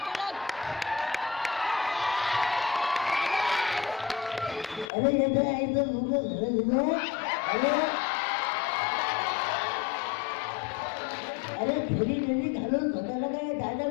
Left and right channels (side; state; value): right; drops out; at 4.9 s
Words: अरे ये तो ऐसे अरे घरी घालून स्वतःला काय दादा